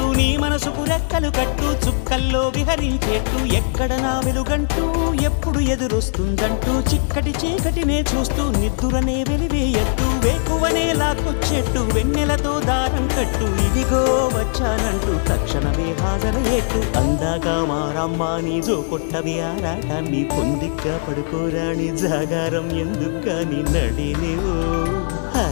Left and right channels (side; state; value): right; silent; 60 dB below the other